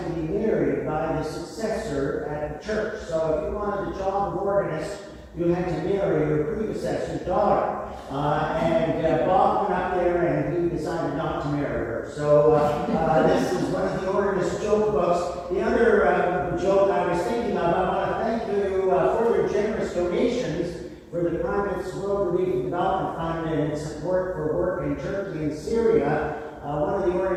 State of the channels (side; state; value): both; identical; correlation 1.00